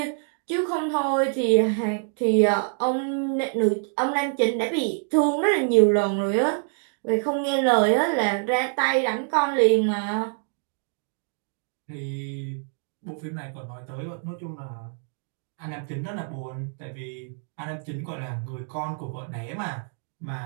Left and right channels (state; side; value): silent; left; 61 dB below the other